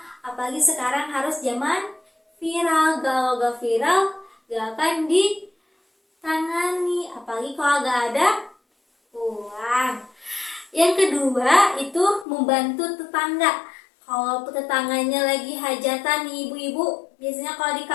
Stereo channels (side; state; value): right; drops out; at 12.2 s